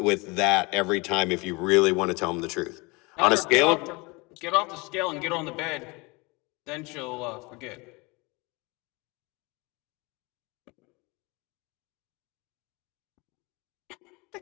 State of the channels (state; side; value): quieter; right; 26.4 dB